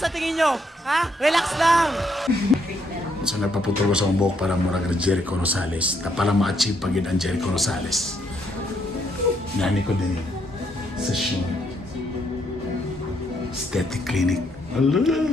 tingin nyo? Ha? Relax lang! So nagpaputol ko sa akong buhok para murag Jericho Rosales. Na pala ma-achieve pag yun ang Jericho Rosales. Nani ko din sa show. Aesthetic clinic.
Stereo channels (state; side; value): normal; both; correlation 0.73